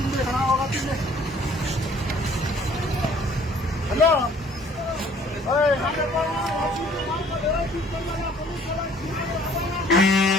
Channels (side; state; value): both; normal; correlation 0.56